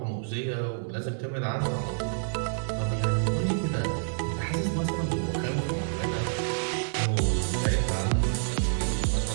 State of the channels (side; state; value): left; silent; digital silence